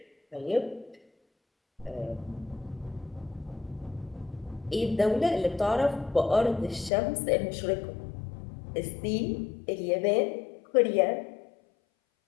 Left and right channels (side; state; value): right; drops out; at 6.9 s